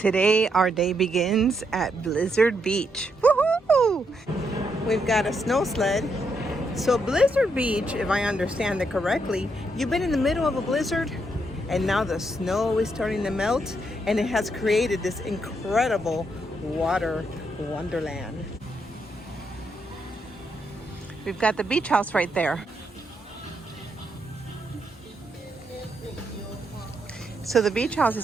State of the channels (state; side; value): normal; both; correlation 0.78